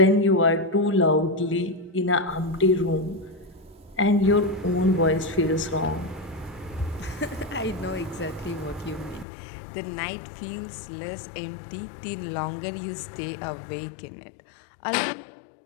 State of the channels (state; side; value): drops out; right; at 9.2 s